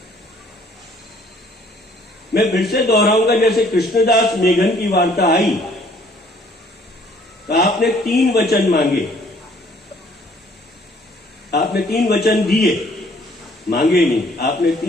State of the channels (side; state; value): both; normal; correlation 0.60